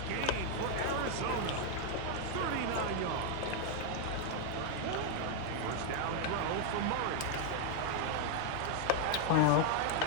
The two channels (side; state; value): both; different; correlation 0.00